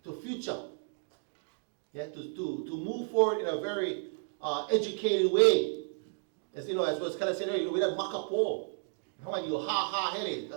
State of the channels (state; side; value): silent; left; 56 dB below the other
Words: to future. Yeah? To move forward in a very educated way. As you know, as was kind of said earlier, we don't makapo. How are you? Ha,